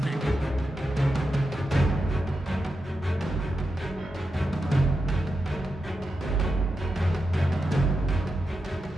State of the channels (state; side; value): normal; both; correlation 0.88